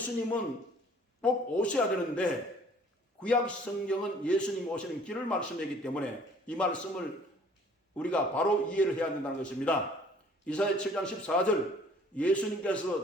꼭 오셔야 되는데 구약 성경은 예수님 오시는 길을 말씀하기 때문에 이 말씀을 우리가 바로 이해를 해야 된다는 것입니다. 이사야 7장 14절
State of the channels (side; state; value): both; normal; correlation 0.55